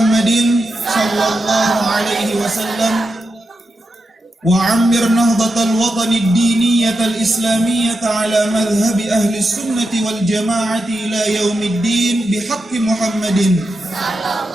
صلى الله عليه وسلم وعمر نهضة الوطن الدينية الإسلامية على مذهب أهل السنة والجماعة إلى يوم الدين بحق محمد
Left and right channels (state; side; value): normal; both; correlation 0.88